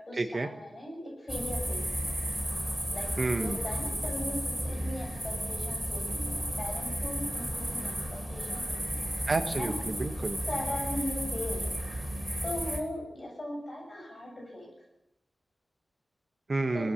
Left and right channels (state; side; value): normal; both; correlation 0.95